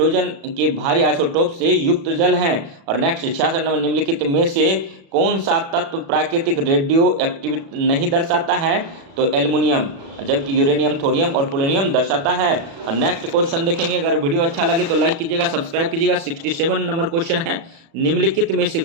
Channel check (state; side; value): late; left; 36 ms